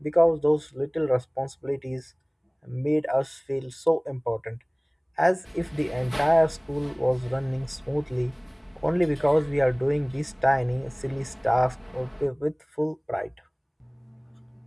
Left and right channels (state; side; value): identical; both; correlation 1.00